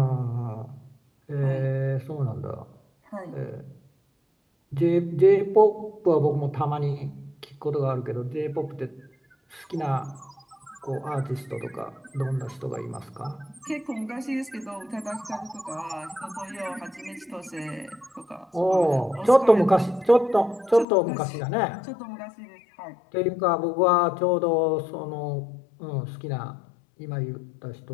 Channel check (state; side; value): drops out; right; at 20.9 s